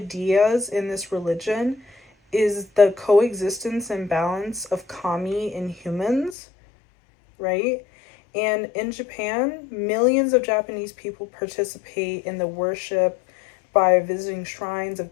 in this religion is the coexistence and balance of kami in humans, right? And in Japan, millions of Japanese people participate in the worship by visiting shrines of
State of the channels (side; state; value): right; drops out; at 6.4 s